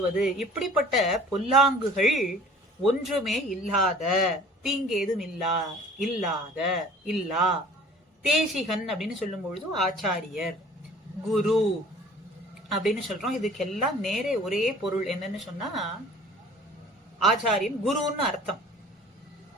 இப்படிப்பட்ட பொல்லாங்குகள் ஒன்றுமே இல்லாத, தீங்கேதும் இல்லா தேசிகன் அப்படின்னு சொல்லும் பொழுது ஆச்சாரியர், குரு அப்படின்னு சொல்றோம். இதுக்கெல்லாம் நேரே ஒரே பொருள் என்னன்னு சொன்னா ஆச்சாரியன் குருன்னு அர்த்தம்.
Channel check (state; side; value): normal; both; correlation 0.49